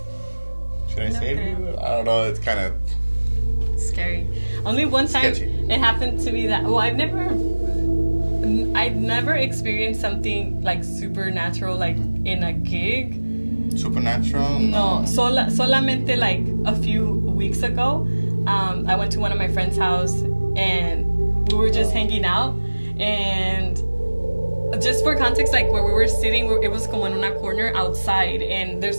should I save you? I don't know. It's kind of scary. Only one time it happened to me that I've never experienced something like supernatural like in a gig. Supernatural? No, solamente like a few weeks ago, I went to one of my friend's house and we were just hanging out, and just for context, like where we were sitting, it was como en una corner outside, and there's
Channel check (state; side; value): inverted; both; correlation -1.00